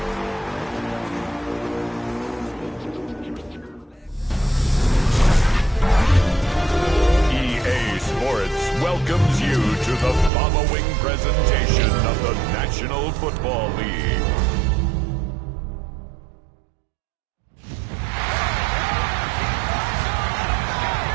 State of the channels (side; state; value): left; drops out; at 10.3 s